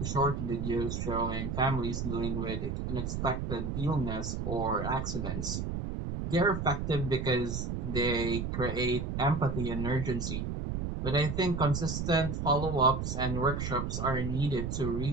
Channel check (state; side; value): noise; right; rumble, 3 dB below the sound